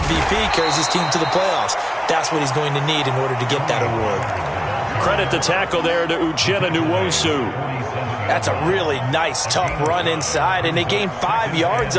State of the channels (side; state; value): both; identical; correlation 1.00